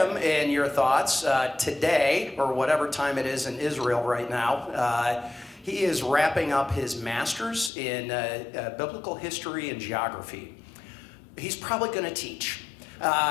in your thoughts, today, or whatever time it is in Israel right now, he is wrapping up his master's in biblical history and geography. He's probably going to teach,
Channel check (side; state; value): right; drops out; at 7.7 s